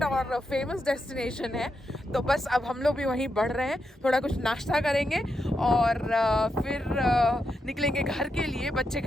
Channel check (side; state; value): both; normal; correlation 0.84